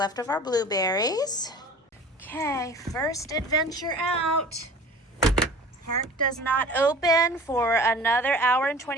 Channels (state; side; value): normal; both; correlation 0.43